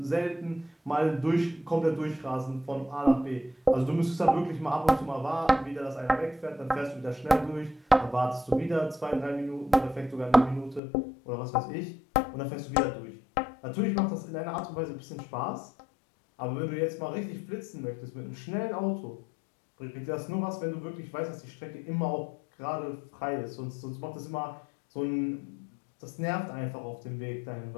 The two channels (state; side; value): drops out; right; at 10.8 s